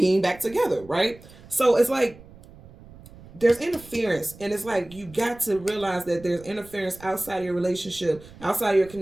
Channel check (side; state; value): right; noise; rumble, 21 dB below the sound